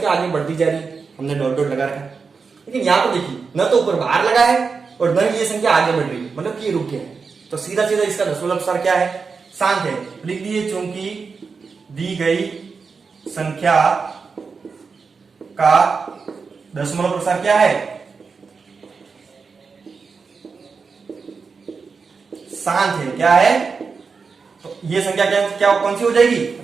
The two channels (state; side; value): quieter; left; 5.0 dB